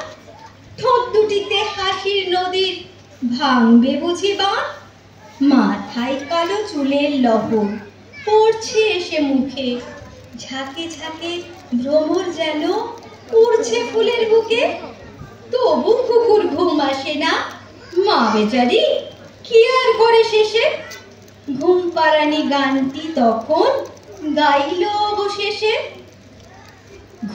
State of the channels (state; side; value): identical; both; correlation 1.00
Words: ঠোঁট দুটিতে হাসির নদীর ভাঙবে বুঝি বাঁধ। মাথায় কালো চুলের লহর পড়ছে এসে মুখে, ঝাঁকে ঝাঁকে ভ্রমর যেন উড়ছে ফুলের বুকে। তবু কুকুর ঘুম আসে না, মা বেচারি কি আর করে শেষে। ঘুমপাড়ানি গানটি তখন গাইল অবশেষে।